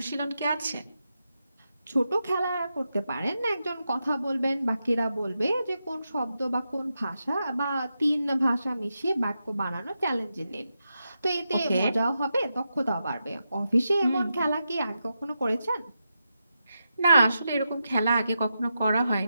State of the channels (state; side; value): inverted; both; correlation -0.87